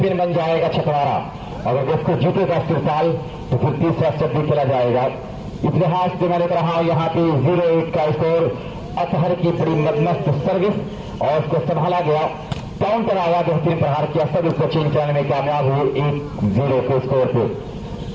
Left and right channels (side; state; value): both; identical; correlation 1.00